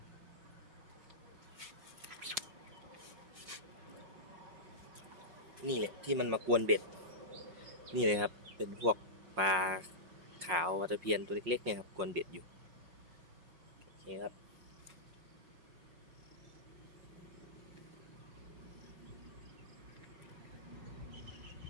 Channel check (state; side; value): late; left; 5.6 ms